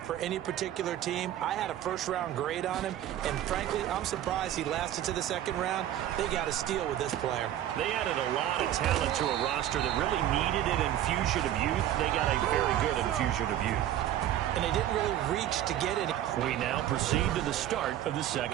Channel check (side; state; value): left; quieter; 12.0 dB